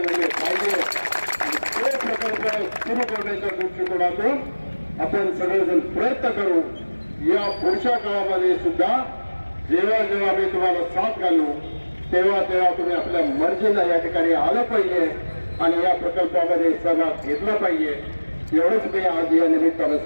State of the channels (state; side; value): inverted; both; correlation -1.00